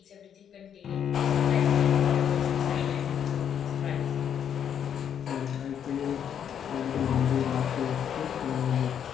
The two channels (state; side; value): quieter; right; 8.7 dB